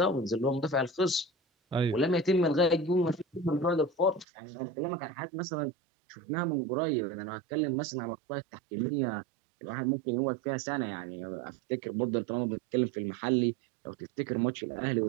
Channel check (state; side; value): drops out; left; at 4.2 s